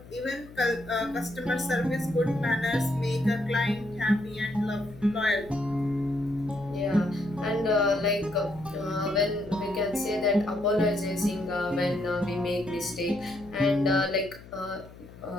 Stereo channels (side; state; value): left; noise; hum, 19 dB below the sound